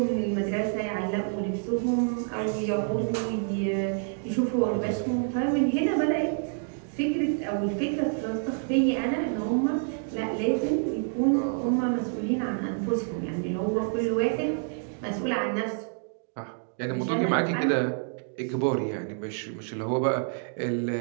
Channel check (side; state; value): left; silent; 59 dB below the other